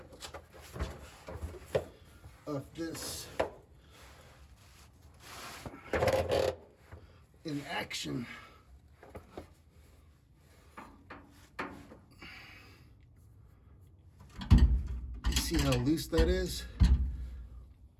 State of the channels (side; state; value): both; identical; correlation 1.00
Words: of this in action. You see how loose that is?